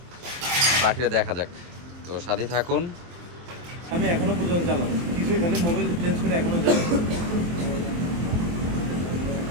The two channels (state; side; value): late; left; 23 ms